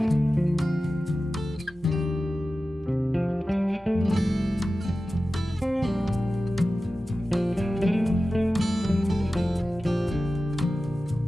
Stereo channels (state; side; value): normal; both; correlation 0.94